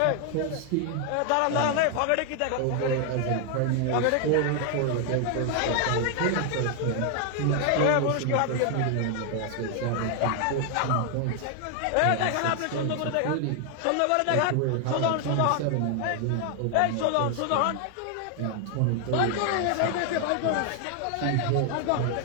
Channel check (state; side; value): different; both; correlation 0.00